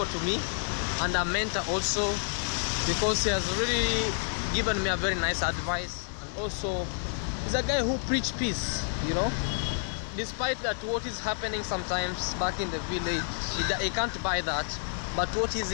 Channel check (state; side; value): silent; right; 58 dB below the other